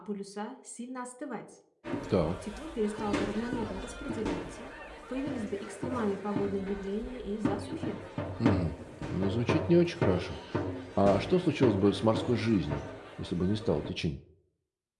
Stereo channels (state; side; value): identical; both; correlation 1.00